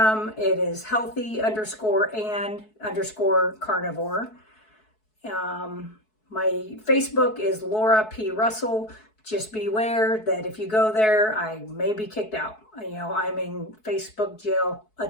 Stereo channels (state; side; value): late; right; 4.6 ms